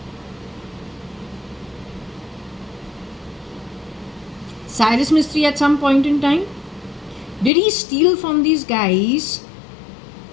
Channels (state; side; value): drops out; right; at 7.5 s